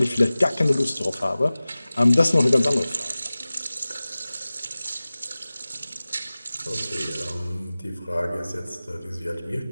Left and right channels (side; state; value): both; inverted; correlation -0.98